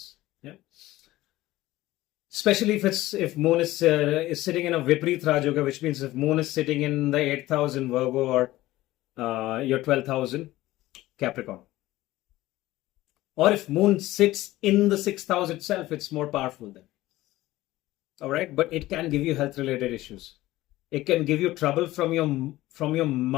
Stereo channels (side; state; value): right; quieter; 16.9 dB